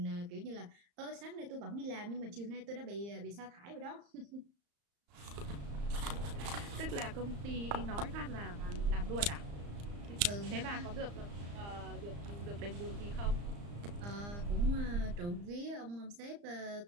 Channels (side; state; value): left; late; 35 ms